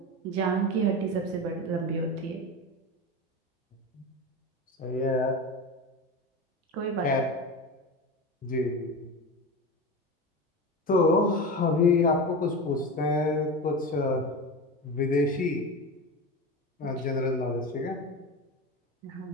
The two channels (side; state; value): both; normal; correlation 0.25